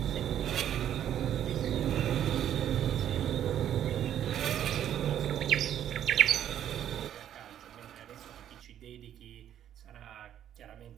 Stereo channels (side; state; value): left; quieter; 10.5 dB